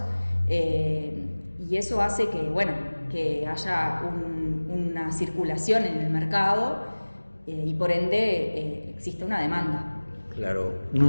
y eso hace que, que haya una circulación en el mercado y por ende existe una demanda. Claro,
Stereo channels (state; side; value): inverted; both; correlation -1.00